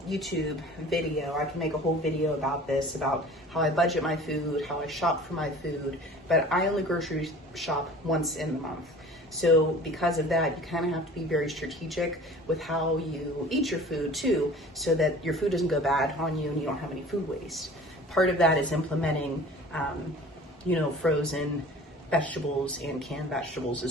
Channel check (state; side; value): normal; both; correlation 0.44